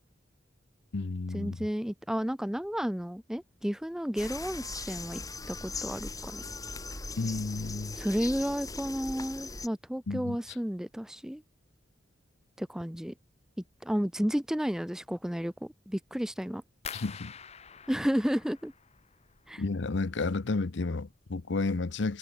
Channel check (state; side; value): normal; both; correlation 0.85